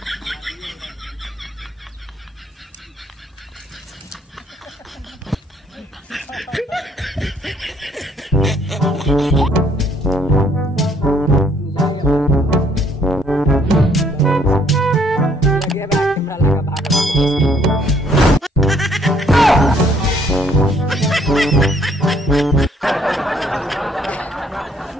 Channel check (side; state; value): both; normal; correlation 0.64